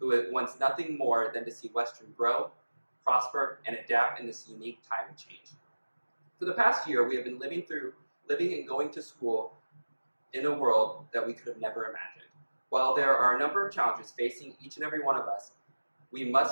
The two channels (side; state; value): both; inverted; correlation -1.00